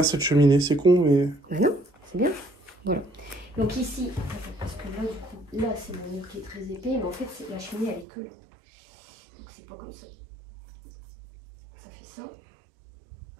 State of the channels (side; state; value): left; drops out; at 8.1 s